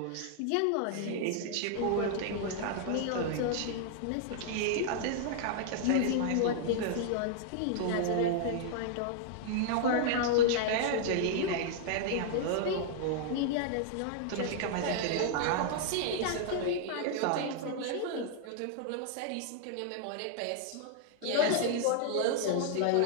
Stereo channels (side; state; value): both; different; correlation -0.01